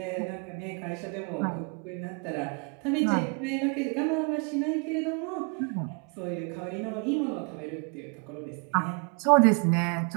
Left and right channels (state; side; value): quieter; left; 36.8 dB